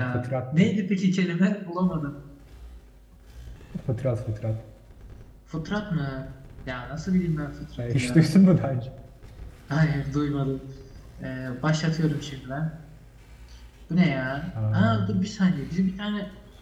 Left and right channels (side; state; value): both; identical; correlation 1.00